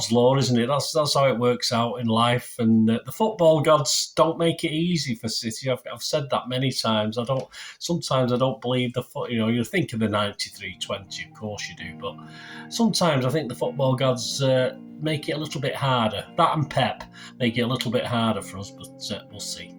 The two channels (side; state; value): both; identical; correlation 1.00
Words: law, isn't it? That's how it works out in life. And the football gods don't make it easy for City. I've said that many times. Sometimes I don't believe the foot. You think of the 93-20, of course you do, but sometimes I think the football gods make it a little bit harder. That and Pep make it a little bit harder for us, but we'll see.